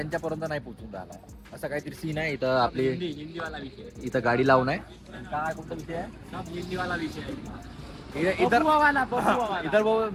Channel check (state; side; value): identical; both; correlation 1.00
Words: नाही पोहोचून राहिला. असं काहीतरी सीन आहे इथं. आपली हिंदीवाला विषय. इथं गाडी लावून आहे. काय कोणता विषय आहे? हिंदीवाला विषय. इधर इधर वो